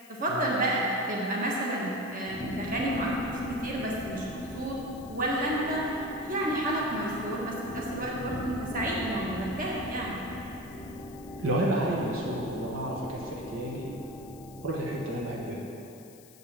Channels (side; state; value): left; noise; hiss, 22 dB below the sound